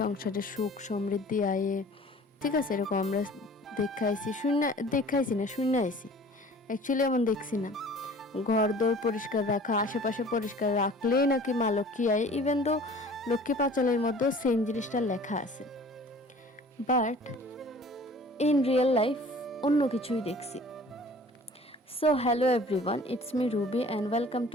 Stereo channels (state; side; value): normal; both; correlation 0.47